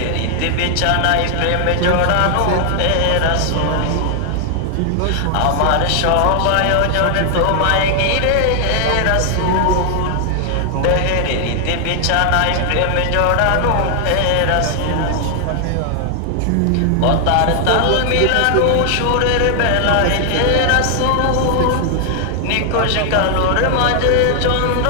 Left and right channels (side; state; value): both; different; correlation 0.00